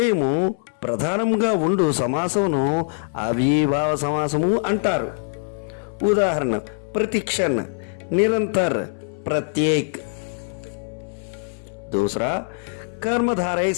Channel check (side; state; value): right; silent; 63 dB below the other